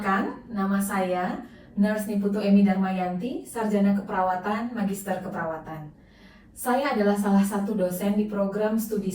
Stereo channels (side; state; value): both; identical; correlation 1.00